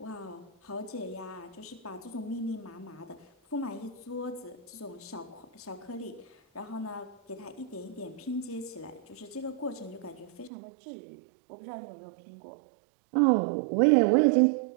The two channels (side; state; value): left; drops out; at 10.5 s